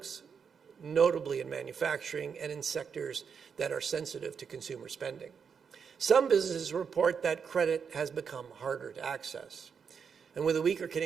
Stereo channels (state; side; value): quieter; left; 6.5 dB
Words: notably in manufacturing and in sectors that are sensitive to consumer spending. Some businesses report that credit has become harder to access. And with a weaker